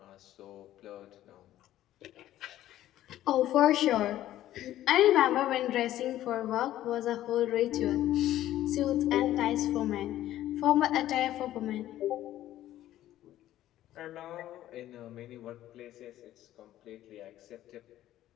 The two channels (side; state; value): right; quieter; 13.4 dB